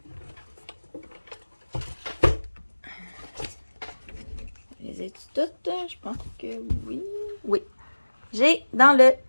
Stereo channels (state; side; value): inverted; both; correlation -1.00